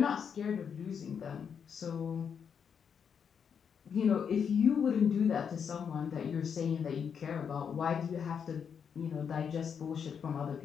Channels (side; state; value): right; quieter; 7.1 dB